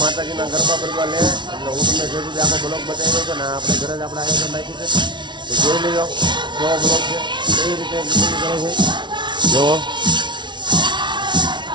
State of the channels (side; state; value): left; late; 0.23 ms